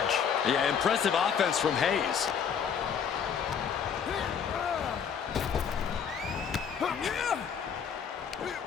Yeah, impressive offense from Hayes.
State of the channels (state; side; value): quieter; right; 7.3 dB